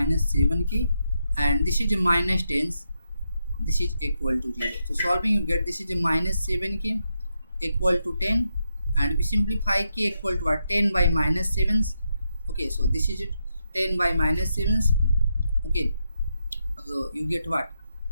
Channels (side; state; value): both; inverted; correlation -0.83